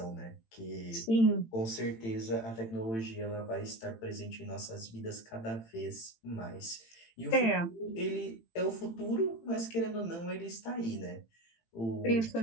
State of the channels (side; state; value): right; late; 18 ms